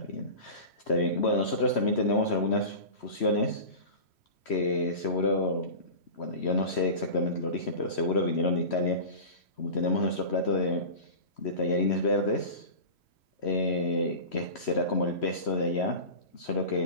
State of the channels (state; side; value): late; right; 3.1 ms